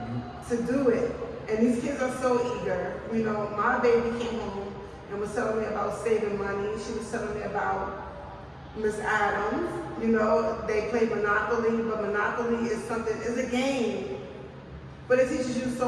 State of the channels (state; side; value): identical; both; correlation 1.00